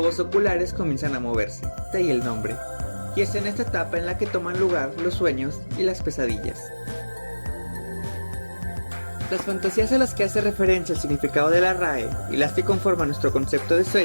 oculares comienzan a moverse, de ahí el nombre. Y es en esta etapa en la que toman lugar los sueños y las pesadillas. Las fantasías a las que hace referencia el significado de la RAE y las que conforman nuestro concepto de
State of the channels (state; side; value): inverted; both; correlation -1.00